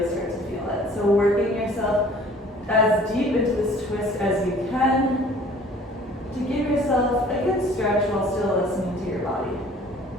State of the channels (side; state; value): both; normal; correlation 0.52